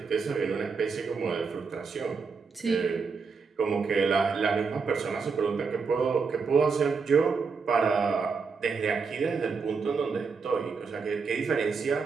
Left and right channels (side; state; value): left; quieter; 5.1 dB